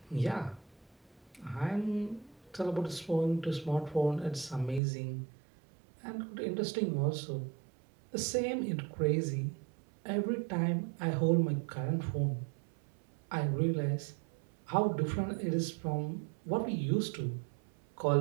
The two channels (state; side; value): drops out; left; at 4.8 s